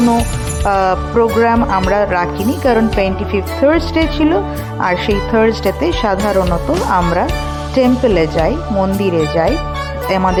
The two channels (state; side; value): identical; both; correlation 1.00